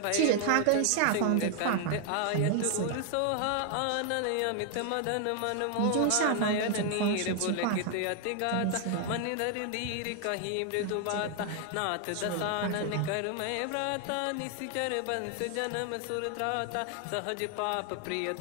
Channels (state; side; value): different; both; correlation 0.00